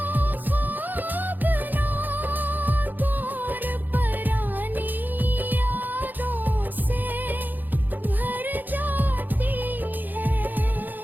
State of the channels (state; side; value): late; left; 0.086 ms